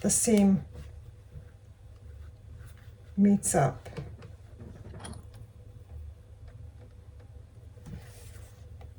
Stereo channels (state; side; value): identical; both; correlation 1.00